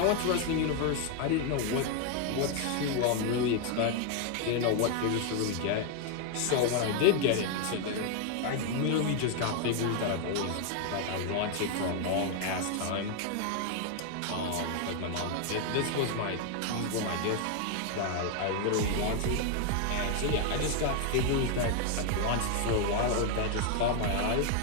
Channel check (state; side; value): different; both; correlation 0.01